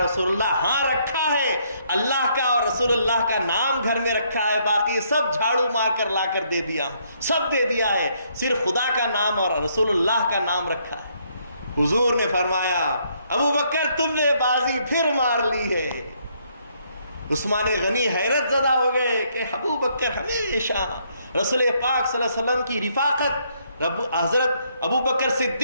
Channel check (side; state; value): both; inverted; correlation -0.70